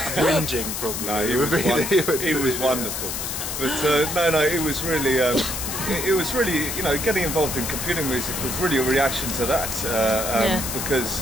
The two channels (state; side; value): noise; left; hiss, 4 dB below the sound